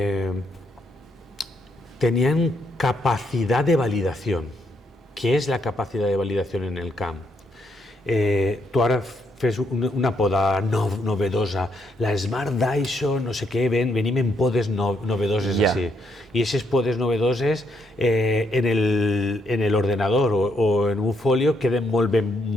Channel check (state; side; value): normal; both; correlation 0.76